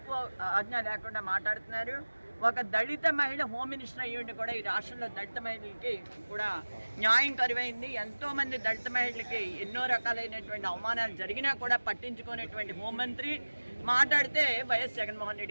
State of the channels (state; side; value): inverted; both; correlation -1.00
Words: ఆజ్ఞ లేకుండా మాట్లాడుతున్నారు. ఒక దళిత మహిళ హోమ్ మినిస్టర్ అయ్యుండి కూడా ఈ రాష్ట్రంలో దళిత మహిళలకి కూడా న్యాయం కరువైంది. ఎంతోమంది దళిత మహిళలకి ఎన్నో రకాలైనటువంటి అవమానాలు జరిగినా కూడా పట్టించుకునేటువంటి హోంమంత్రి మాట్లాడితే వైఎస్ జగన్మోహన్